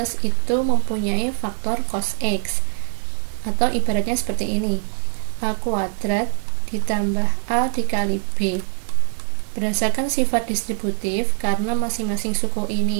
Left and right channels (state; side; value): silent; left; digital silence